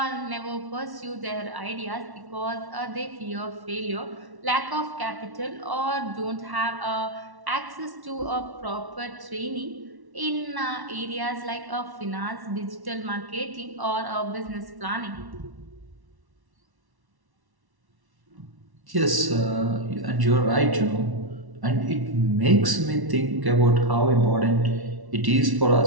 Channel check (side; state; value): left; late; 1.1 ms